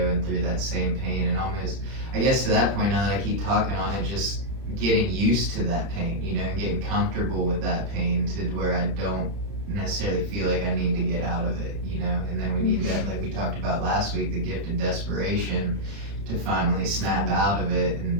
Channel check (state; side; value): late; left; 31 ms